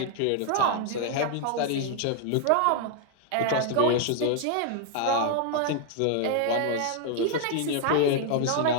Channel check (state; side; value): different; both; correlation 0.00